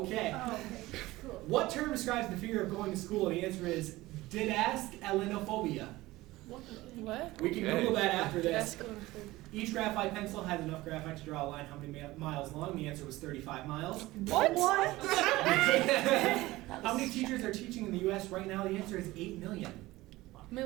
Oh, okay. Cool. What term describes the fear of going to school? The answer is didascalinophobia. What? We can Okay. Google that after That's this. going through. Each graphite pencil has enough graphite to draw a line how many miles long? The answer was 35 miles. What? How many teachers are teaching in the U.S. right now? The answer is 8 million.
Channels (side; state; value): left; quieter; 18.6 dB